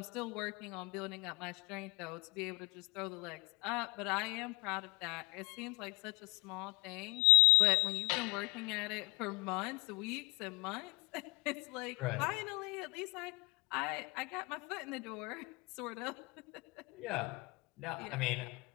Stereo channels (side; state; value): right; quieter; 28.0 dB